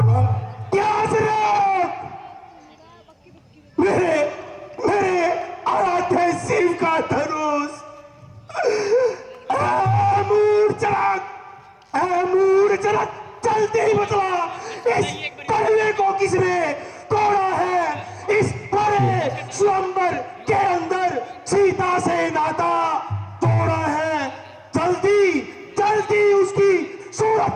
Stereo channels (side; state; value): both; identical; correlation 1.00